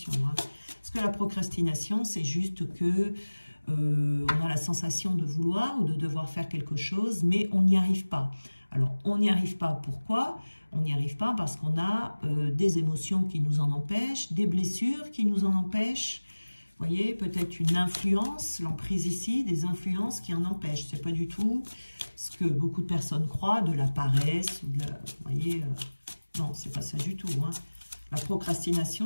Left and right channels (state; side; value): inverted; both; correlation -1.00